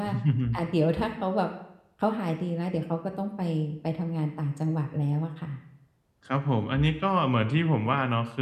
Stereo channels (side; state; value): both; identical; correlation 1.00